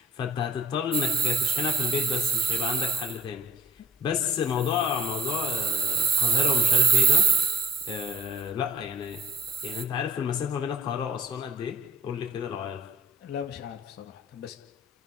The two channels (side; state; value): both; normal; correlation 0.52